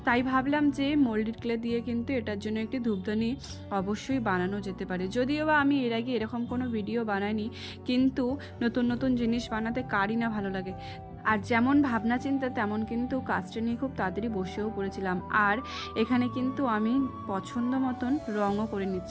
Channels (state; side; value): identical; both; correlation 1.00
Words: তাই ভাবলাম যে মোল্ডেড ক্লে দিয়ে কিন্তু এটার জন্য একটি ধূপদানি অবশ্যই বানানো যেতে পারে। যদিও বা আমি এর আগে এরকম কোনো ভিডিও বানাইনি, কিন্তু নতুন নতুন জিনিস বানাতে কারই না ভালো লাগে। আর যেমন ভাবনা চিন্তা তেমন কিন্তু কাজটা নিয়ে খুব তাড়াতাড়ি বসেও পড়েছিলাম। আর এখানে কিন্তু আমি পছন্দ মতন রঙও করে